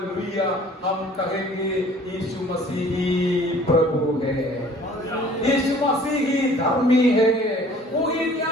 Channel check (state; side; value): normal; both; correlation 0.52